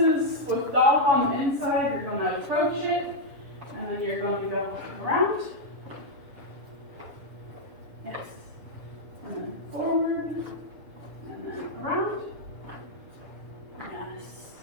with dog on the inside, you're going to approach it, and then you're going to go around. Yes. And then forward, and then around. Yes.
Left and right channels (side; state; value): left; late; 7.0 ms